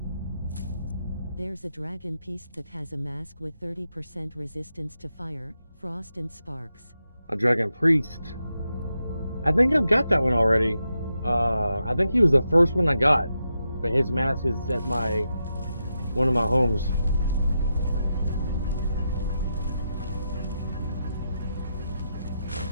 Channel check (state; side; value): inverted; both; correlation -0.86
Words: There's a dragon piece that has a mask with 30% resistance to fire, frost and sparks. A dragon priest. I think I've got that one already. I think he was the first one I got, but his mask is at one of my homes.